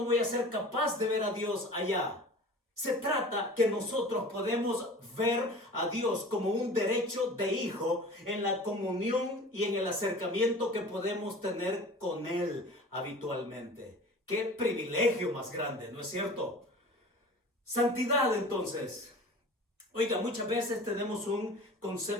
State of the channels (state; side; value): normal; both; correlation 0.40